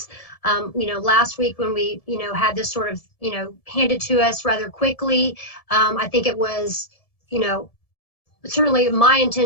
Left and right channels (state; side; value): late; right; 1.7 ms